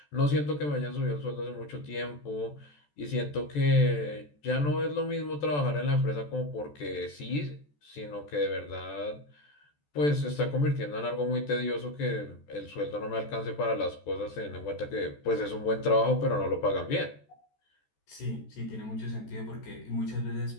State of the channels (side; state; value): right; late; 14 ms